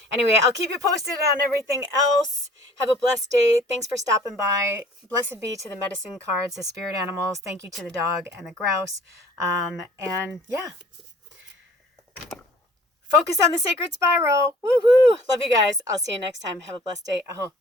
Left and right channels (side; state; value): both; normal; correlation 0.51